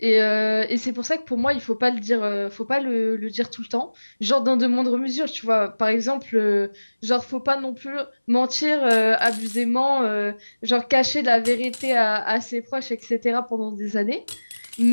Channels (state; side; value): inverted; both; correlation -1.00